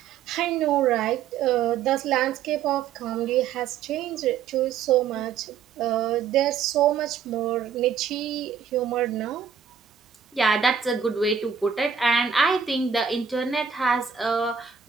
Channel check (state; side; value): quieter; left; 7.1 dB